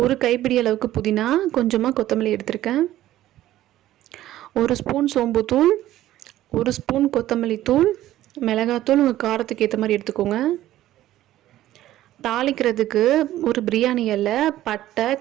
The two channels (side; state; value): left; quieter; 14.1 dB